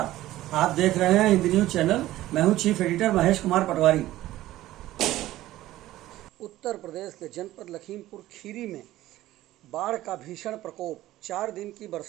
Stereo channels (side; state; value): left; quieter; 15.4 dB